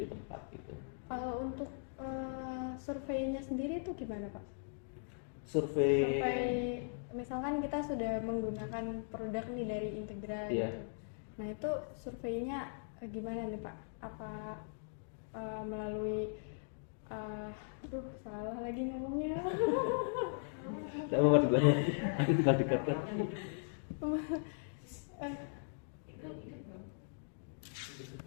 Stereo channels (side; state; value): right; silent; digital silence